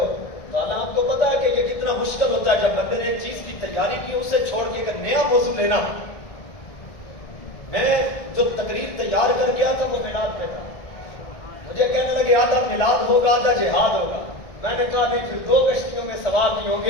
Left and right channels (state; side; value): late; right; 1.6 ms